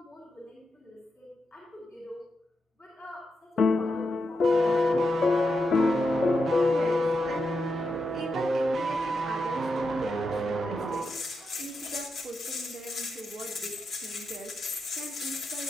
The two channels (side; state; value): both; normal; correlation 0.86